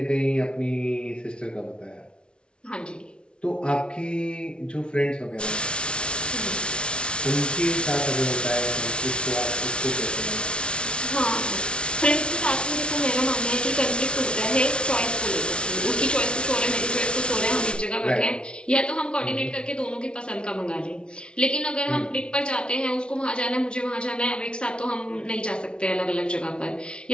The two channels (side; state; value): right; late; 0.057 ms